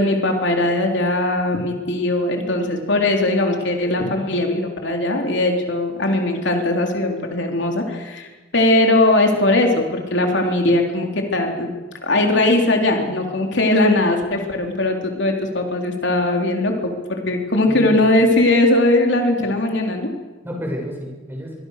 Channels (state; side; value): normal; both; correlation 0.20